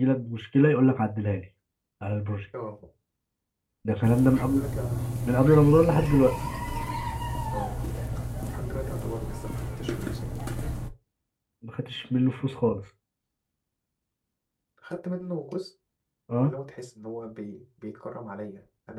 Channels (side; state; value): both; identical; correlation 1.00